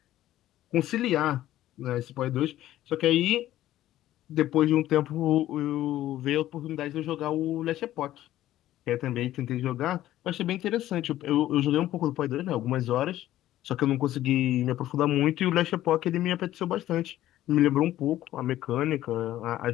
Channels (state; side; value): quieter; right; 13.8 dB